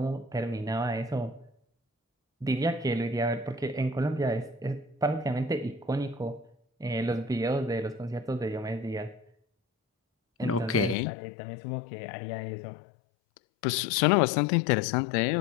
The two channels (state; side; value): drops out; right; at 11.0 s